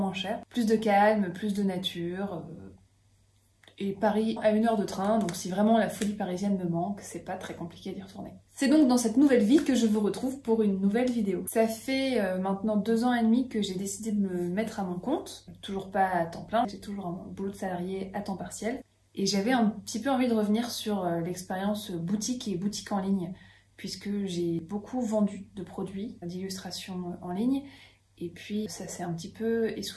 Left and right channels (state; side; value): identical; both; correlation 1.00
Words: cher. Plus de calme, plus de nature. Et Paris à 1 heure de train, donc si vraiment la folie parisienne me manque, c'est pas très compliqué d'y retourner. C'est donc dans cette nouvelle vie que je vous retrouve pour une nouvelle vidéo. Ça fait maintenant 2 ans et demi que j'ai décidé de me mettre à mon compte. Toujours pas à temps plein, j'ai toujours un boulot de salarié à temps partiel. Et j'avais un petit peu envie de revenir sur l'expérience boutique et boutique en ligne, puisque j'ai beaucoup vendu de produits d'illustration en ligne. Et puis ça s'est un petit peu